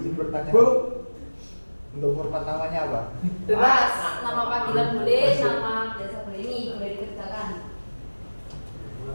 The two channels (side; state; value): both; inverted; correlation -1.00